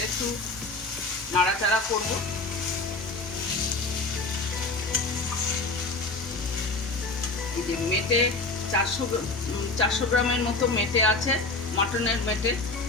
একটু নাড়াচাড়া করবো। যে মেটে 400 গ্রামের মতো মেটে আছে, মাটনের মেটে,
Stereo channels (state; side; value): quieter; right; 3.3 dB